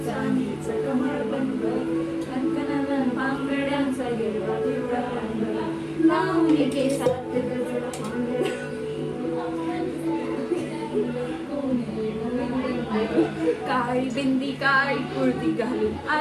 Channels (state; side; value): identical; both; correlation 1.00